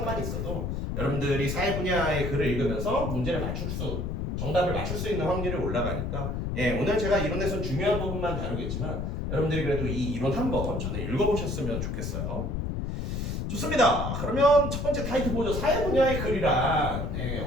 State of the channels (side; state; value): left; noise; rumble, 2 dB below the sound